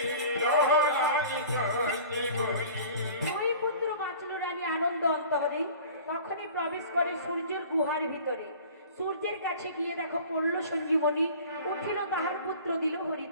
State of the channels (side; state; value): both; inverted; correlation -0.44